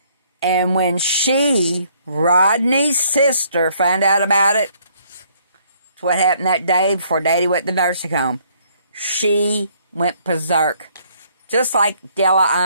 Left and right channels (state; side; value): inverted; both; correlation -0.65